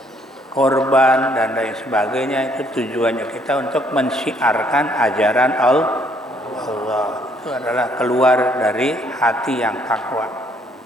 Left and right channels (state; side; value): normal; both; correlation 0.66